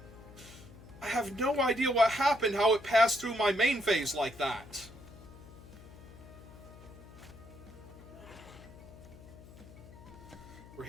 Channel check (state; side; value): noise; left; hum, 19 dB below the sound